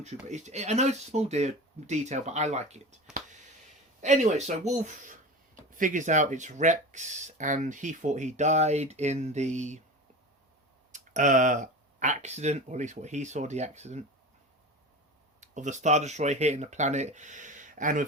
trooper. I know it's a small detail, but I like it. Anyway, so Wolf figures out it's Rex, and he thought he died in the accident, or at least what he saw, the accident of the Star Destroyer hitting the planet, and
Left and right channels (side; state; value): both; normal; correlation 0.31